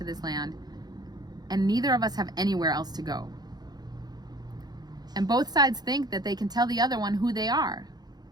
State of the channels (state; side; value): late; left; 0.19 ms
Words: this land, and neither of us have anywhere else to go. And both sides think that they can tell the other one who they are,